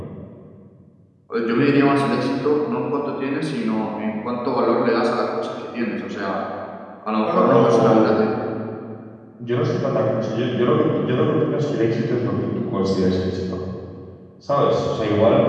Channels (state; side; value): identical; both; correlation 1.00